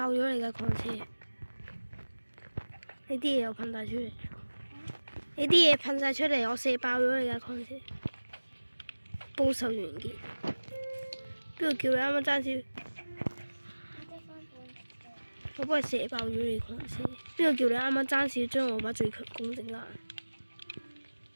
咗你架礦車，你啲嘢又噴晒出嚟，你啲嘢噴晒出嚟，我射爆咗你架礦車，報仇完結。邊個叫你啱啱爭少？我幫你射爆咗你礦車。邊個叫你啱啱爭少將我把最強攻整爛？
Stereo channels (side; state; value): both; inverted; correlation -1.00